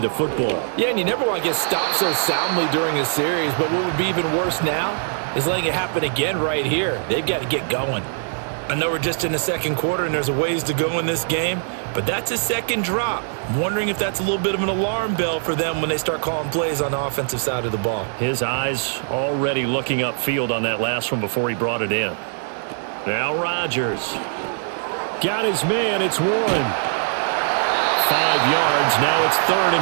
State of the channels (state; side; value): silent; left; 62 dB below the other